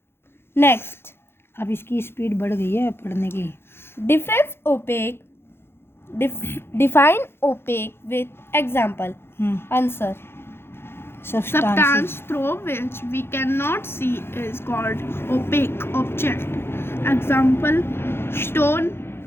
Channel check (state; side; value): late; right; 0.11 ms